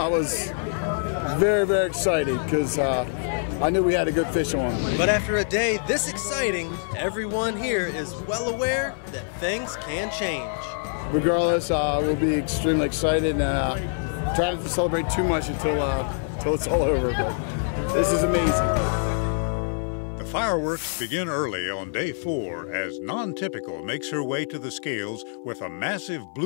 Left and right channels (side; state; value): right; silent; 57 dB below the other